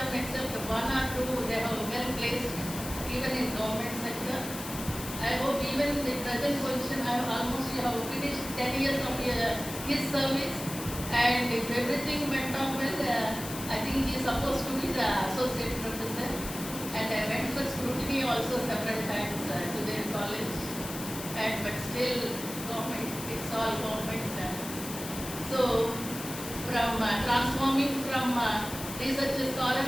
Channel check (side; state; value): left; noise; hiss, 9 dB below the sound